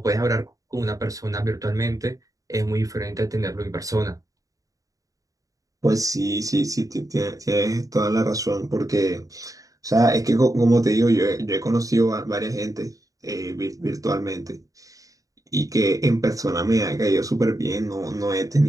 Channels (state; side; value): late; left; 0.17 ms